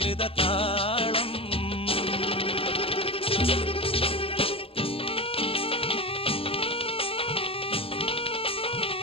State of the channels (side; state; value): right; late; 0.27 ms